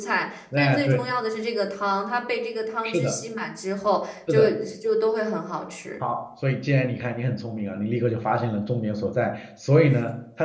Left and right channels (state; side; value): identical; both; correlation 1.00